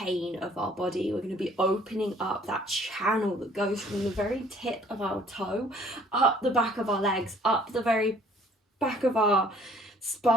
of our body. We're going to be opening up that channel that goes from the very tip of our toe up the back of our legs, up the very back of our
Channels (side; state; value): both; normal; correlation 0.57